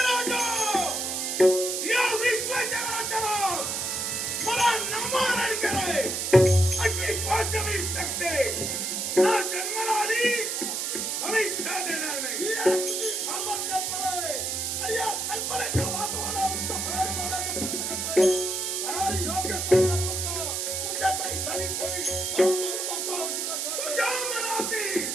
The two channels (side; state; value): right; noise; hiss, 1 dB below the sound